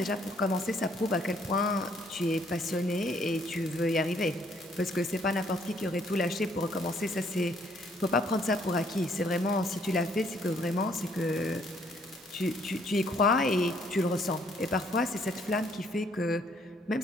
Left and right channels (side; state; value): both; normal; correlation 0.65